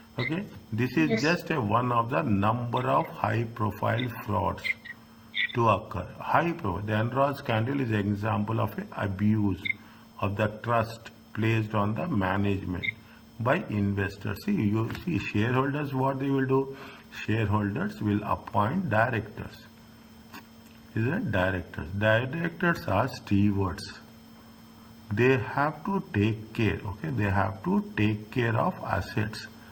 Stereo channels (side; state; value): both; identical; correlation 1.00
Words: Okay, this is Yes. just one of the number of high profile frauds to occur. High profile. The Enron scandal is an example of an abuse of the trust placed on the management by investors. See, you see, shareholders, what they will do? Shareholders will appoint directors. Is it directors? Directors are stewards. They have to take care, okay? They have to take care of assets.